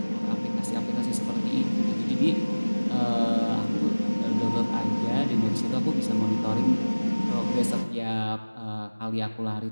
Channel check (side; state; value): both; inverted; correlation -1.00